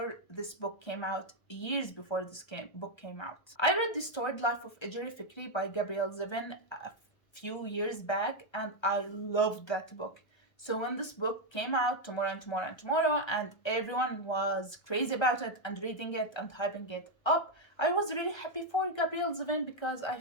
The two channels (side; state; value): right; late; 1.3 ms